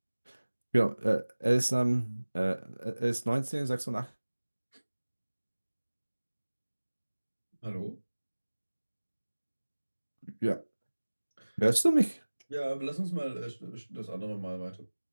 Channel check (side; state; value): both; inverted; correlation -1.00